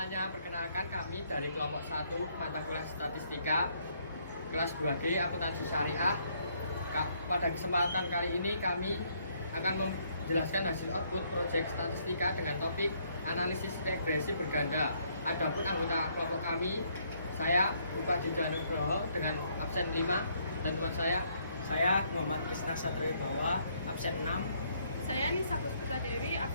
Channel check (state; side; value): inverted; both; correlation -0.69